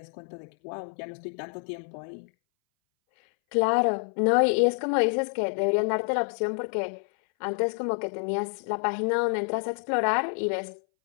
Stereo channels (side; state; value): right; silent; 60 dB below the other